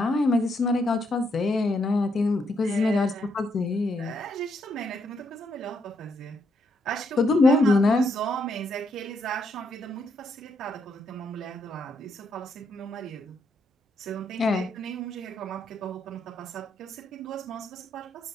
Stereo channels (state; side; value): normal; both; correlation 0.76